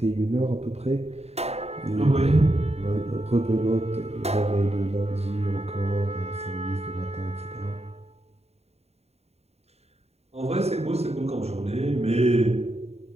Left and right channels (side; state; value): left; late; 0.30 ms